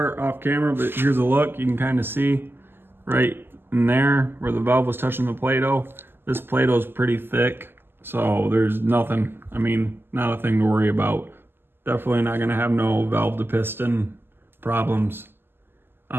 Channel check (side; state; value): left; late; 0.10 ms